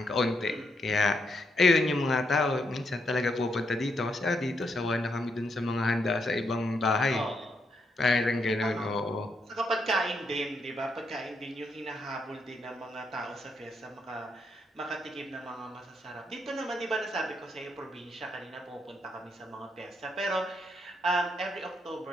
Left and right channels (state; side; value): normal; both; correlation 0.78